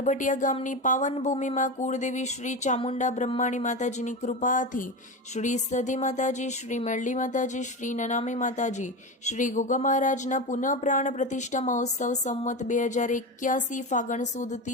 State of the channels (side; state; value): both; normal; correlation 0.21